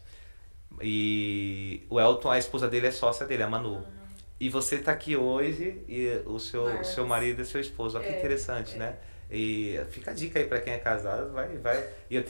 E o Elton, a esposa dele é sócia dele, a Manu. E você está aqui hoje e o seu marido é seu esposo. Olha que interessante, né? E fica a dica aí para quem é casado, vai. E eu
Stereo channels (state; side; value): inverted; both; correlation -1.00